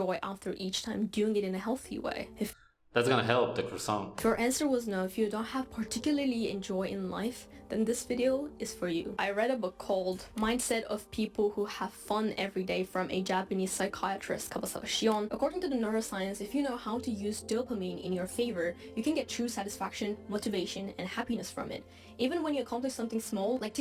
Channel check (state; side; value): identical; both; correlation 1.00